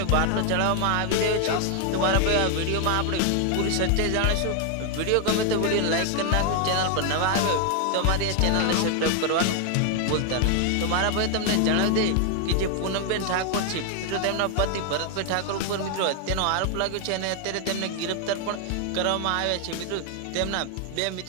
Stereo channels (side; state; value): both; different; correlation 0.00